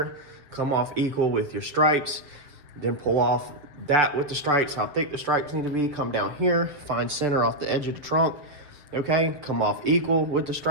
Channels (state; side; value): late; left; 6.8 ms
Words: Come off equal with your stripes. Then pull off that with the stripes, how thick the stripes need to be. Come down here, find center off the edge of the trunk. Okay, come off equal with the